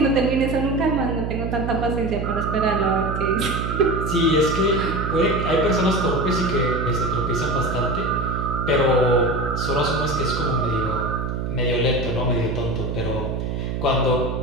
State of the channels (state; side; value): noise; right; hum, 3 dB below the sound